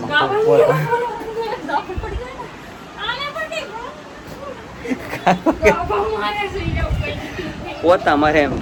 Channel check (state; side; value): identical; both; correlation 1.00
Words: પોતા મારે એમ